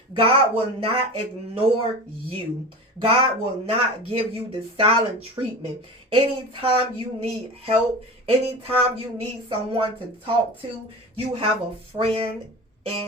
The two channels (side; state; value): both; normal; correlation 0.31